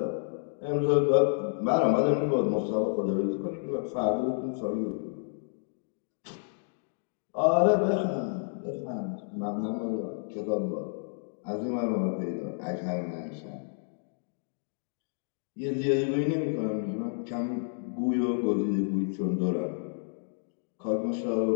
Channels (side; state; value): right; silent; digital silence